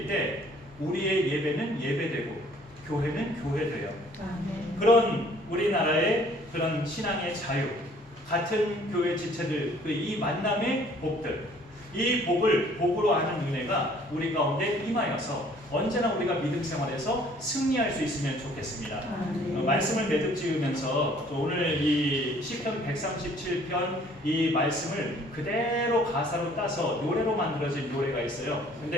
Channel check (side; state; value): both; normal; correlation 0.57